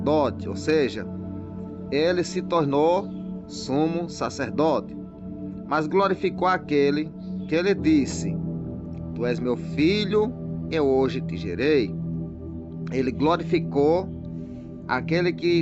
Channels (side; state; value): both; identical; correlation 1.00